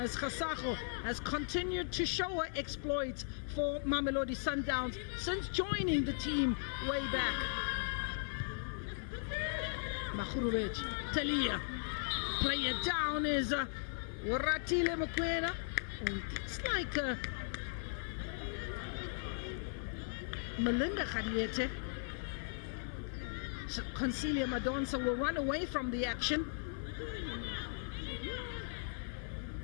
as Khasago has continued to show her exploits for Mamelodi Sundowns since joining the team way back. Makhurubeti, Talia, play it down is Waratile Mokwena. It's like Melinda Khadiete. So Concelia Madonsa will run away from the action.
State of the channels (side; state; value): right; silent; 52 dB below the other